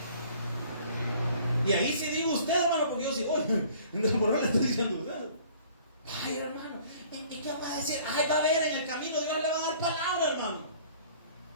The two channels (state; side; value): inverted; both; correlation -0.53